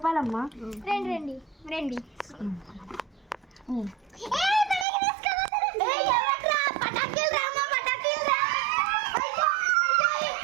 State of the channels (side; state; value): left; drops out; at 4.9 s